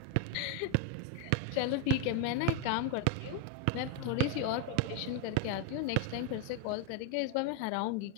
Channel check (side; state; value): both; different; correlation 0.02